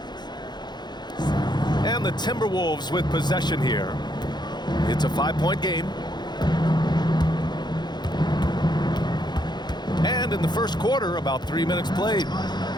And the Timberwolves with possession here. It's a 5-point game. And in the first quarter, about 3 minutes played.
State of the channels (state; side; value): late; right; 0.21 ms